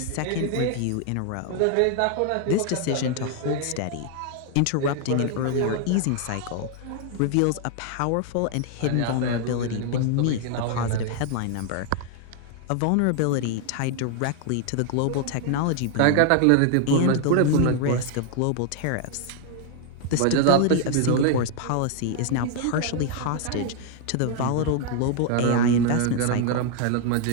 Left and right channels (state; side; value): different; both; correlation 0.00